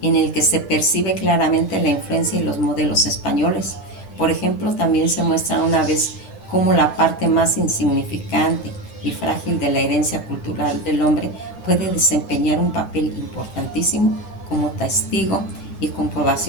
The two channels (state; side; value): late; right; 9.3 ms